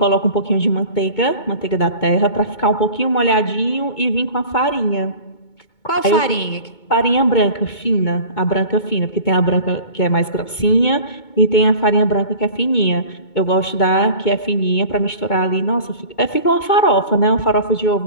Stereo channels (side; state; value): right; late; 2.2 ms